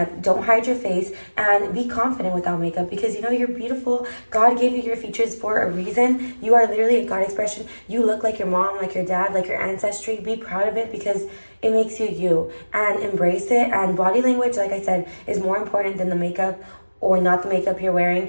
don't hide your face, and be confident without makeup, because you know you're beautiful. God gave you your features for a reason. You are literally a God expression. You look like your mom, like your dad, like your ancestry. Be proud of it, because it makes you you, and embrace it. And body language, like I said, is more important than the makeup or not the makeup you're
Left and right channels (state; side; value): inverted; both; correlation -1.00